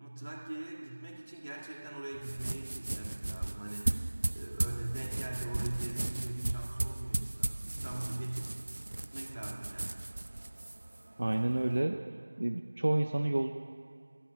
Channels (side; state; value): both; inverted; correlation -1.00